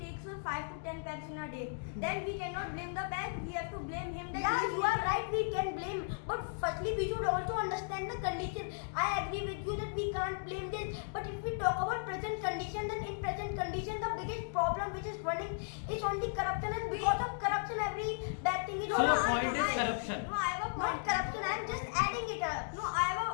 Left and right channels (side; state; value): right; silent; digital silence